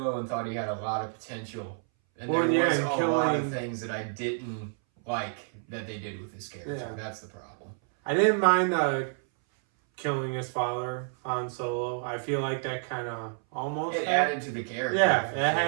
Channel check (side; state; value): left; silent; 58 dB below the other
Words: and thought he had a lot of potential. And there was a lot of things that I didn't like that they did with his character. Yeah. That's the problem. I didn't mind killing his father on Solo. I feel like that kind of almost... It added to the character. Yeah, it